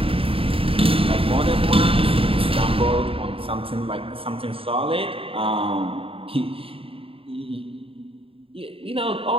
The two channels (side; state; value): left; late; 0.27 ms